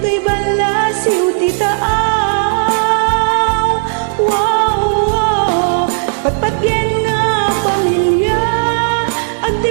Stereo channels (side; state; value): left; silent; digital silence